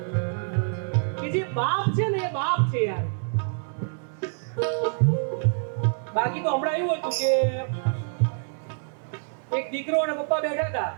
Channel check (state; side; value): silent; left; 61 dB below the other